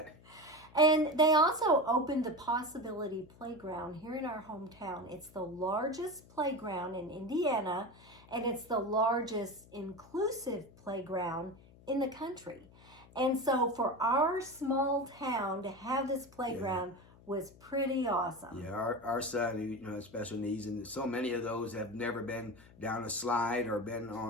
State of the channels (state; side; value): noise; left; hum, 24 dB below the sound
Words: And they also opened the Possibility Playground here in our hometown. It's the largest playground in Indiana, and it's the largest inclusive playground in the country. And so for our small town to have this playground was pretty awesome. Yeah, our son, who has special needs, and so many of those have never been down a slide or been